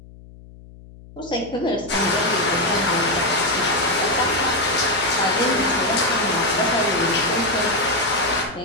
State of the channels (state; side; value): noise; left; hum, 20 dB below the sound